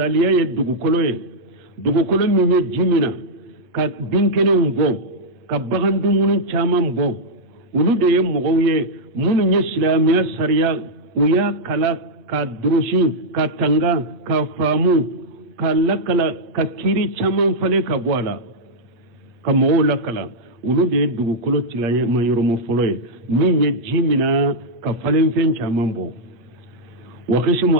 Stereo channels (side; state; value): left; late; 8.2 ms